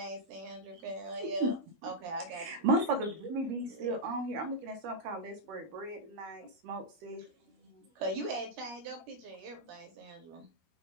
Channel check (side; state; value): left; late; 13 ms